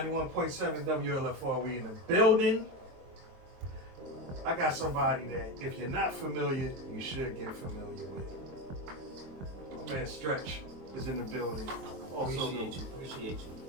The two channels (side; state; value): left; late; 23 ms